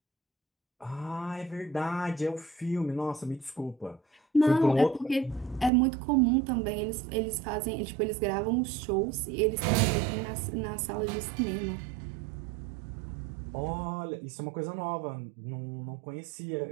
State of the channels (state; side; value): drops out; left; at 5.7 s